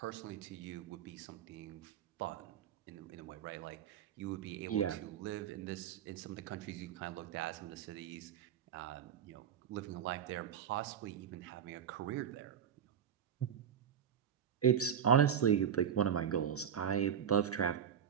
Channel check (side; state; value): left; quieter; 8.7 dB